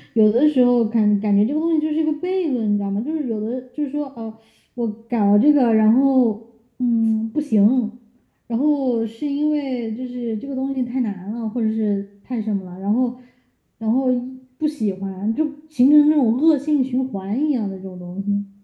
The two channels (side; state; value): both; identical; correlation 1.00